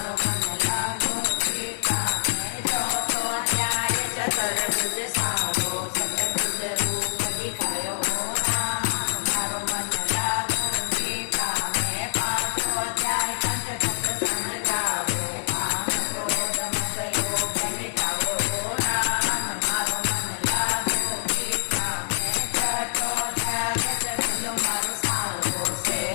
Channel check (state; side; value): silent; right; digital silence